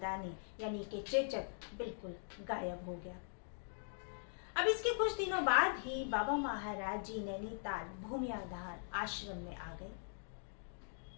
यानी कि चेचक बिल्कुल गायब हो गया। अब इसके कुछ दिनों बाद ही बाबा महाराज जी नैनीताल भूमियाधार आश्रम में आ गए।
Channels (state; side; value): silent; right; digital silence